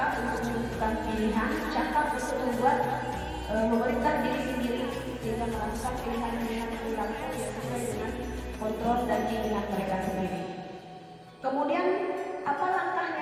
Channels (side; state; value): both; identical; correlation 1.00